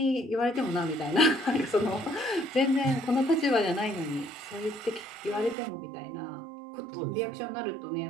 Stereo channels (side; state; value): left; drops out; at 5.6 s